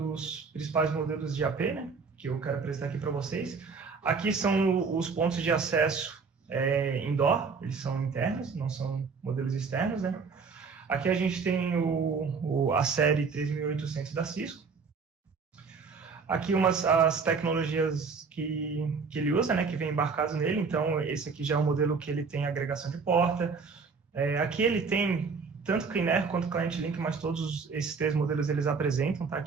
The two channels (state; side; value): quieter; left; 5.1 dB